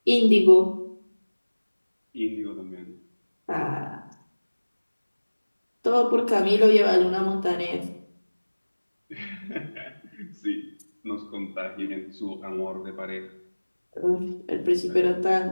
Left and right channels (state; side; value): inverted; both; correlation -1.00